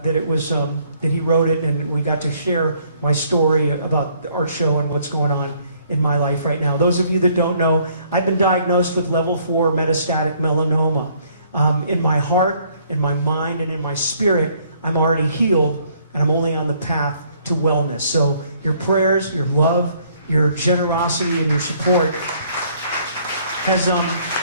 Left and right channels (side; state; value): both; inverted; correlation -0.64